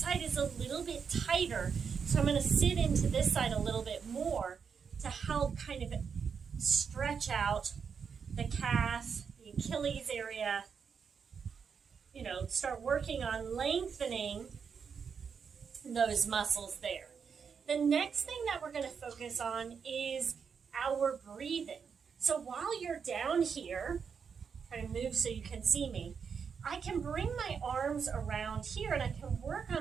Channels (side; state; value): left; quieter; 6.4 dB